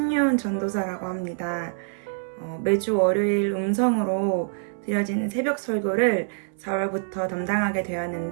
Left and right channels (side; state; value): left; silent; 59 dB below the other